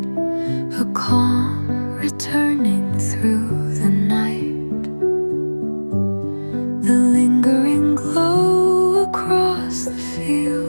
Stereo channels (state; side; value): inverted; both; correlation -1.00